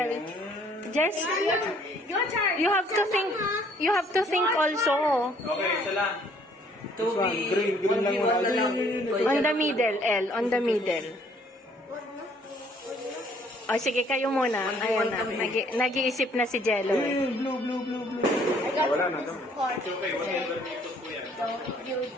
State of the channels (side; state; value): both; normal; correlation 0.61